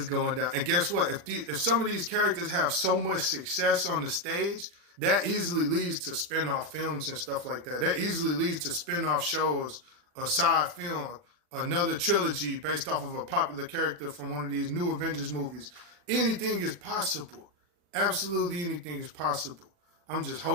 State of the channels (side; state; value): left; late; 40 ms